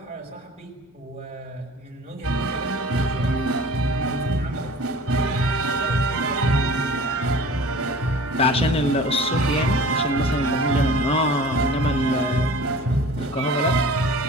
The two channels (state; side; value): normal; both; correlation 0.43